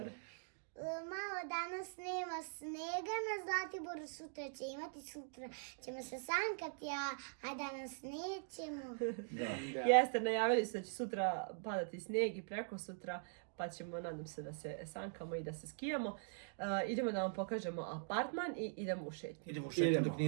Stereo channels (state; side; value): silent; left; digital silence